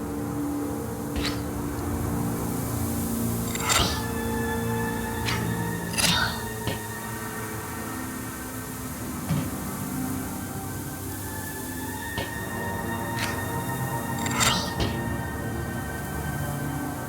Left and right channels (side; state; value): both; identical; correlation 1.00